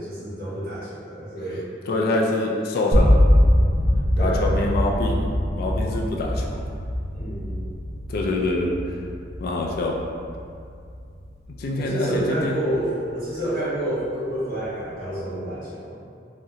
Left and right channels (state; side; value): normal; both; correlation 0.75